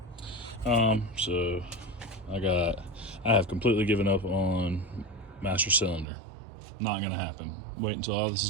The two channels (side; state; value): left; drops out; at 6.1 s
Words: So I have completely given up on master cylinder. Not gonna happen. Wait until all this is